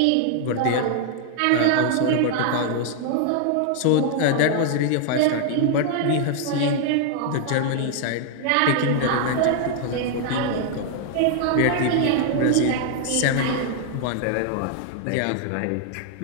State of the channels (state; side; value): different; both; correlation 0.00